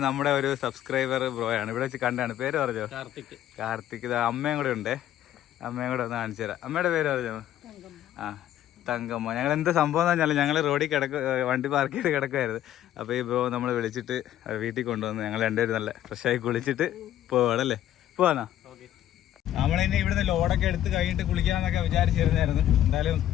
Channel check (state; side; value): quieter; right; 12.1 dB